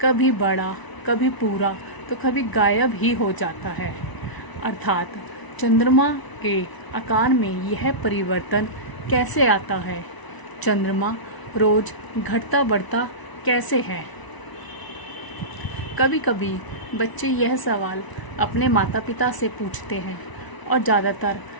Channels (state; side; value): late; right; 1.0 ms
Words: कभी बड़ा, कभी पूरा, तो कभी गायब ही हो जाता है। अर्थात चंद्रमा के आकार में यह परिवर्तन कैसे आता है। चंद्रमा रोज घटता बढ़ता कैसे है। कभी कभी बच्चे यह सवाल अपने माता पिता से पूछते हैं और ज़्यादातर